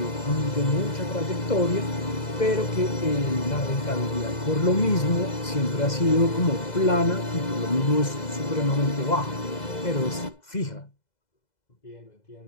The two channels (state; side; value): late; right; 2.0 ms